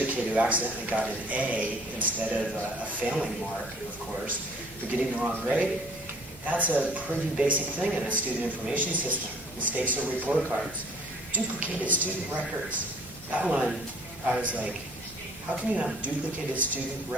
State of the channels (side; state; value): both; normal; correlation 0.54